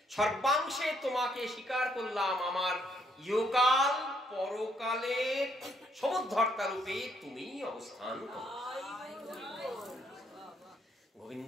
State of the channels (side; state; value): both; normal; correlation 0.71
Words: সর্বাংশে তোমাকে স্বীকার করলাম, আমার ইহকাল পরকালের সমুদ্ধর্তা রূপে তুমি অবস্থান করো। গোবিন্দ